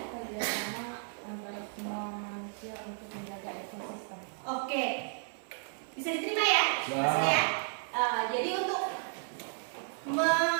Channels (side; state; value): left; silent; 56 dB below the other